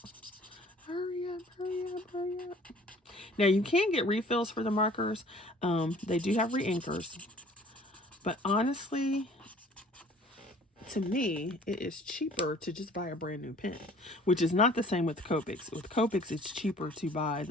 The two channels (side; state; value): both; normal; correlation 0.52